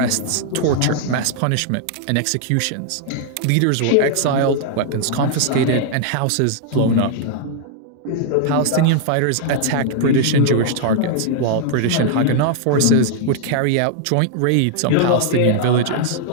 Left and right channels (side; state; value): both; different; correlation 0.00